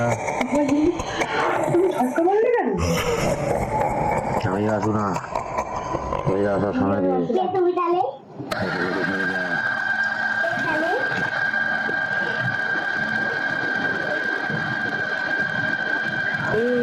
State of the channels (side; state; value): both; identical; correlation 1.00